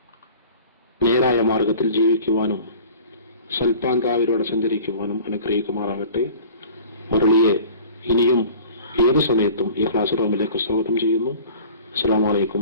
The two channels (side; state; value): both; inverted; correlation -0.44